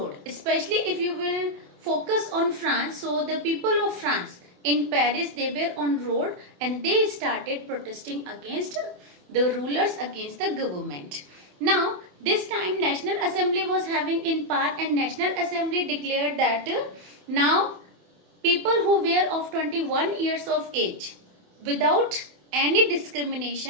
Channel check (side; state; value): left; late; 28 ms